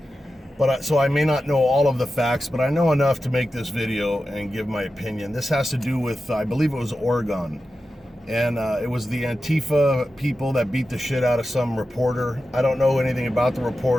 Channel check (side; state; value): both; normal; correlation 0.92